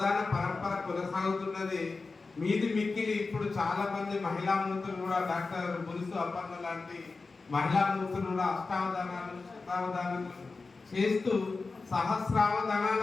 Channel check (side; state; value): right; quieter; 4.0 dB